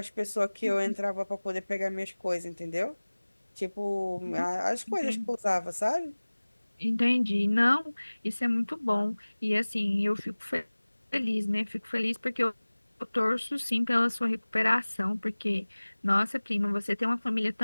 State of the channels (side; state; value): both; inverted; correlation -1.00